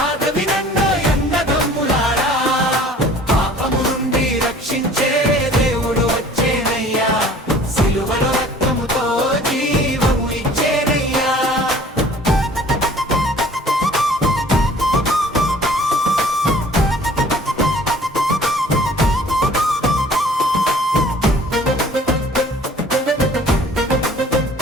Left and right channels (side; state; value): both; normal; correlation 0.50